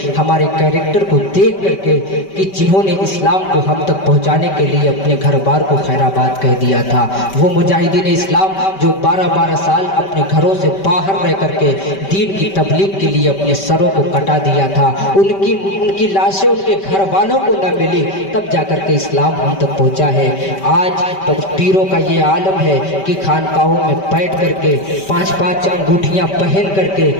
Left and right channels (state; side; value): late; right; 5.2 ms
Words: हमारे कैरेक्टर को देख करके, कि जिन्होंने इस्लाम को हम तक पहुंचाने के लिए अपने घर बार को खैराबाद कह दिया था। वो मुजाहिदीन इस्लाम जो 12-12 साल अपने घरों से बाहर रह करके दीन की तबलीग के लिए अपने सरों को कटा दिया था, उनकी लाशें उनके घर वालों को न मिली, तब जाकर के इस्लाम हम तक पहुंचा है। आज तो पीरों का ये आलम है कि खानकाहों में बैठ करके 5-5 अंगूठियां पहन